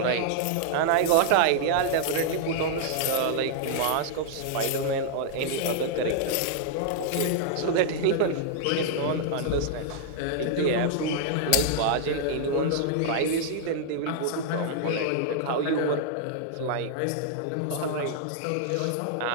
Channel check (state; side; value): different; both; correlation -0.01